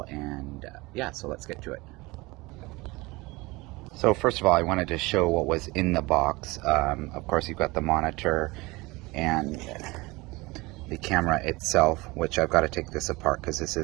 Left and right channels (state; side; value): quieter; left; 22.8 dB